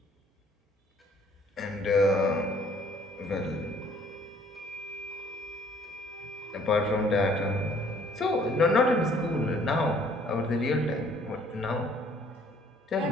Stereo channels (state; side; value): normal; both; correlation 0.59